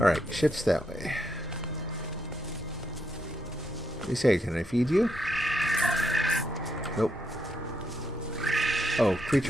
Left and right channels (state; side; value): normal; both; correlation 0.79